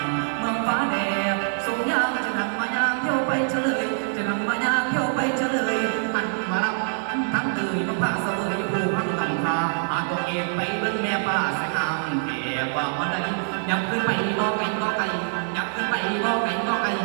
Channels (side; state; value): left; silent; digital silence